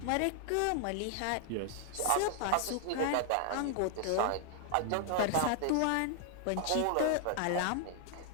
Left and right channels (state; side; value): different; both; correlation 0.00